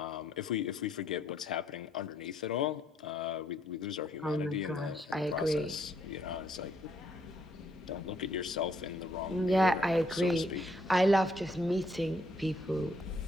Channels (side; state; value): both; normal; correlation 0.70